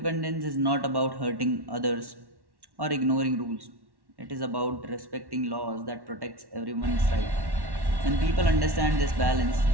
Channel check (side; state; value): left; late; 1.1 ms